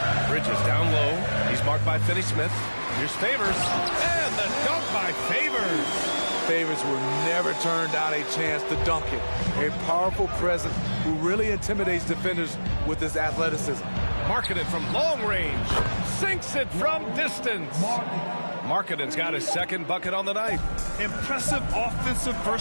Bridges down low. He's marked by Finney-Smith. Here's Favors. And the dunk by Favors. Favors will never turn down a chance to dunk it. A powerful presence who really intimidates defenders with his athleticism. Markkanen from long range. Sinks it from distance. Markkanen's got his second bucket on the night. Impressive offensive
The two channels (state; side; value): inverted; both; correlation -1.00